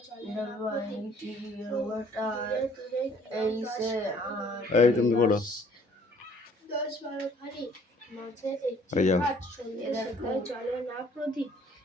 এই তুমি বলো। চলে না প্রদীপ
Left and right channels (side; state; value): both; normal; correlation 0.58